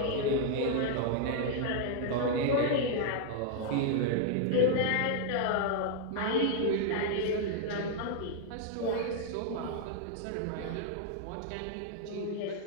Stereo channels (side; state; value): both; different; correlation 0.00